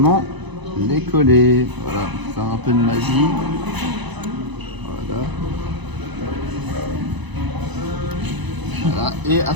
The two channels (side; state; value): left; late; 1.0 ms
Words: les coller. Voilà, faire un peu de magie. Voilà. Voilà. Et à